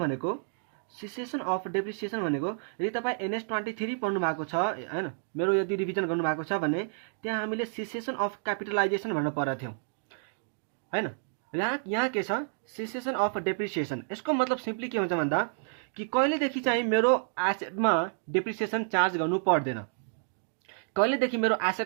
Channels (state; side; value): silent; left; digital silence